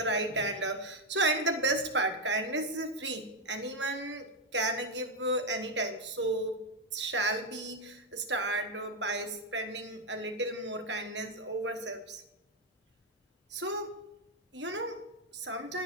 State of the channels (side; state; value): both; normal; correlation 0.03